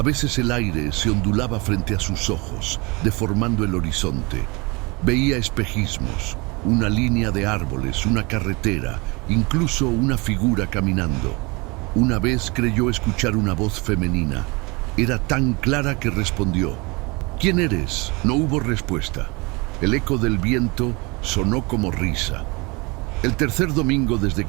veces el aire se ondulaba frente a sus ojos, deformando el horizonte. Veía espejismos, una línea de árboles, una carretera, incluso una figura caminando. Una vez creyó escuchar una voz femenina. Era tan clara que respondió. «¿Quién eres?». No hubo respuesta. El eco del viento sonó como risa. El tercer domingo desde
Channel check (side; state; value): left; quieter; 27.0 dB